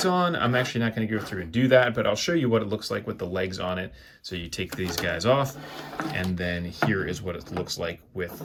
on, I'm actually not going to go through and do that, but I'll show you what it looks like with the legs on it. So you take these guys off, and then here is what it looks like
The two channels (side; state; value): both; identical; correlation 1.00